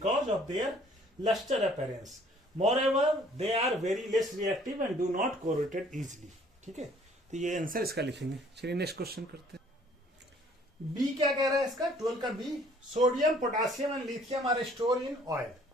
of their lustre appearance. Moreover they are very less reactive and do not corrode easily। ठीक है, तो ये आंसर इसका लिखेंगे। चलिए नेक्स्ट क्वेश्चन करते हैं। बी क्या कह रहा है इसका? 12 का B, sodium, potassium and lithium are store in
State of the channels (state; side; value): normal; both; correlation 0.58